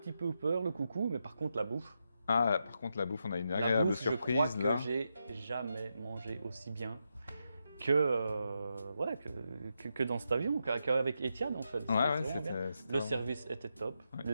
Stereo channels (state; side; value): inverted; both; correlation -0.84